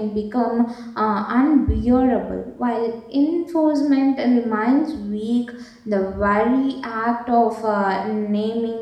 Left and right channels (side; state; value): both; identical; correlation 1.00